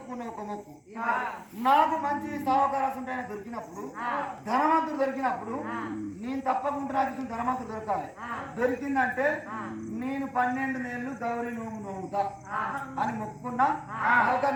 ఒక మొక్కు. నాకు మంచి సావకాశం దొరికినప్పుడు ధనవంతుడు దొరికినప్పుడు నేను తప్పకుండా నాకు ధనవంతుడు దొరకాలి. దొరికిందంటే నేను 12 నెలలు గౌరీ నోము నోముతా అని మొక్కుకున్నా.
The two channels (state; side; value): identical; both; correlation 1.00